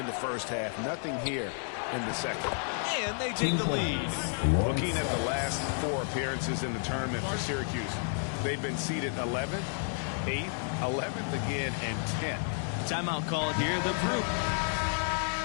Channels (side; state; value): right; silent; 55 dB below the other